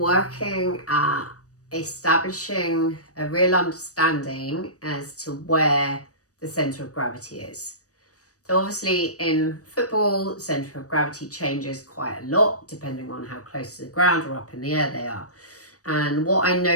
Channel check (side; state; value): right; late; 0.66 ms